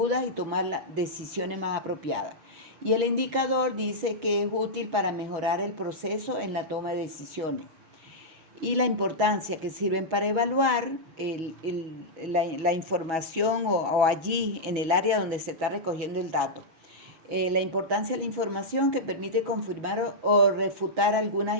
y tomar decisiones más apropiadas. Y el indicador dice que es útil para mejorar el proceso en la toma de decisiones. Y la importancia que sirven para evaluar la información o allí en el área donde se está recogiendo el dato. La importancia de la información que permite confirmar o refutar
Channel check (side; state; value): left; late; 6.2 ms